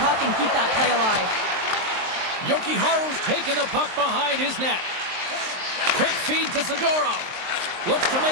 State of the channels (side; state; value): left; late; 23 ms